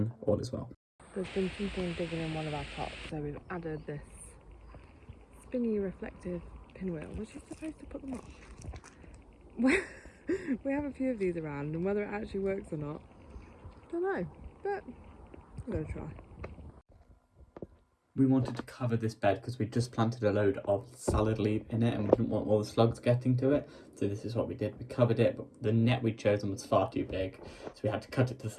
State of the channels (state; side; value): identical; both; correlation 1.00